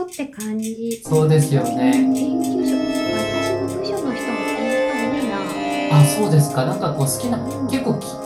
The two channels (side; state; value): both; identical; correlation 1.00